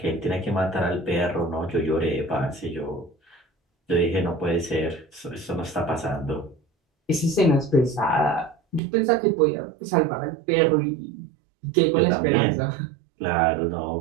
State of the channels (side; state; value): left; drops out; at 8.8 s